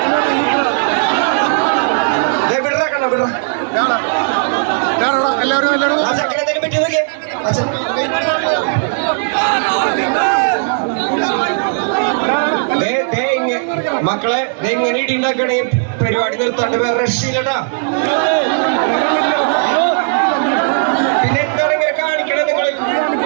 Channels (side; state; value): left; silent; digital silence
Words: ചെക്കനെന്തെങ്കിലും പറ്റി നോക്കിയേ. മക്കളെ എങ്ങനെ ഇടി ഉണ്ടാക്കണേ പരിപാടി നിർത്താണ്ട് വേറെ രക്ഷയില്ലട്ടാ. പിന്നെ എന്താണ് ഇങ്ങനെ കാണിക്കണേ നിങ്ങൾ?